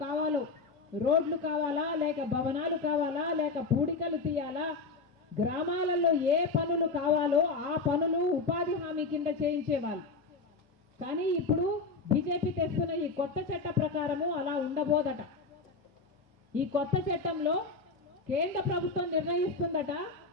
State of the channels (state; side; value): quieter; right; 4.1 dB